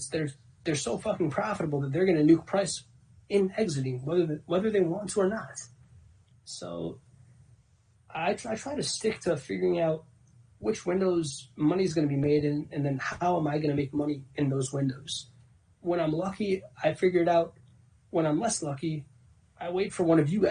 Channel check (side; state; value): both; identical; correlation 1.00